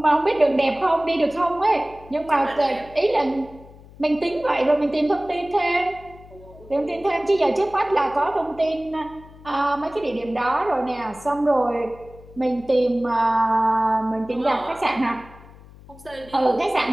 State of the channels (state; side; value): noise; left; hum, 21 dB below the sound